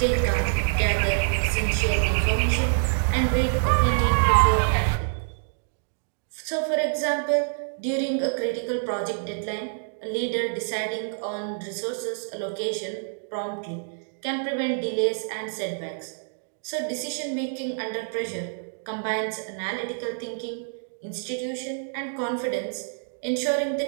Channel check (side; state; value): left; silent; digital silence